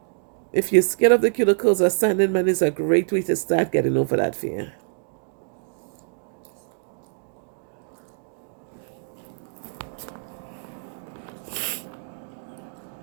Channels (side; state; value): left; silent; 62 dB below the other